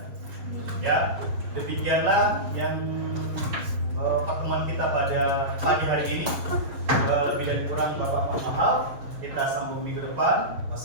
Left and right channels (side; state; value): left; late; 6.9 ms